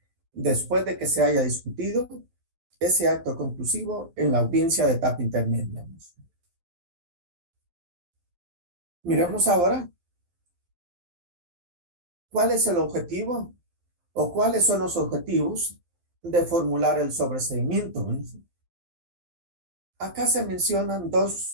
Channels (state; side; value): late; left; 12 ms